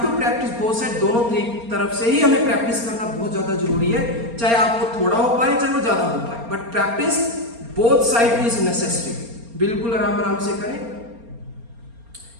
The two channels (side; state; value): left; late; 4.3 ms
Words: to practice both side, दोनों तरफ से ही हमें प्रैक्टिस करना बहुत ज्यादा जरूरी है, चाहे आपको थोड़ा हो पाए चाहे वो ज्यादा हो पाए, but practice both side is necessary. बिल्कुल आराम आराम से करें,